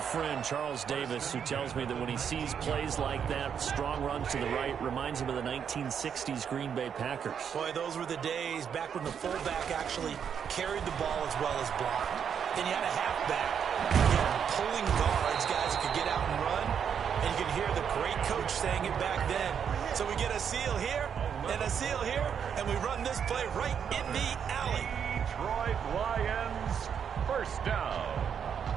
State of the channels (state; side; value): quieter; left; 7.7 dB